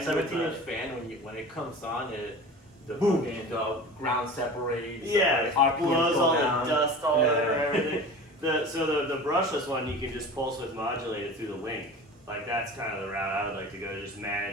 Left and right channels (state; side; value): normal; both; correlation 0.36